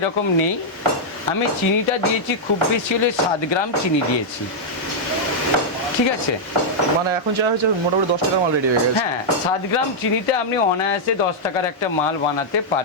নেই। আমি চিনিটা দিয়েছি খুব বেশি হলে 7 গ্রাম চিনি দিয়েছি, ঠিক আছে। মানে এখন যা হচ্ছে মোটামুটি 10 টাকার মাল রেডি হয়ে গেছে। হ্যাঁ, 7 গ্রাম চিনিতে আপনি অনায়াসে 10 টাকার একটা মাল বানাতে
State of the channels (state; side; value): normal; both; correlation -0.05